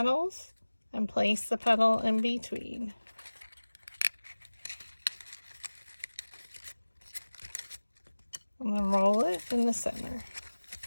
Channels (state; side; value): inverted; both; correlation -1.00